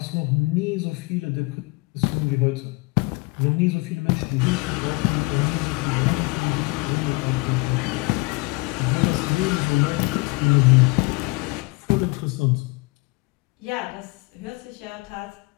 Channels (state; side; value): quieter; right; 25.9 dB